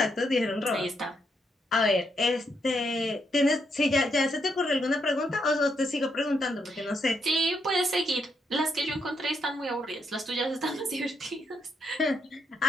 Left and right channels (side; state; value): both; normal; correlation 0.78